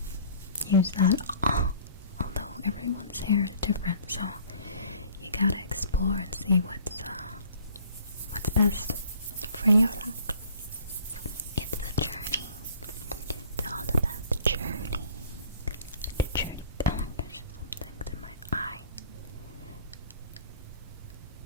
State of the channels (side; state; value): both; inverted; correlation -0.51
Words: use that. Although everyone's hair is different, so you gotta explore and see what's best for your locks.